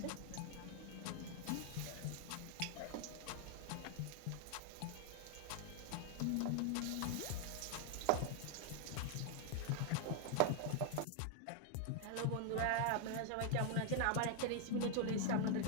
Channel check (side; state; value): both; different; correlation 0.00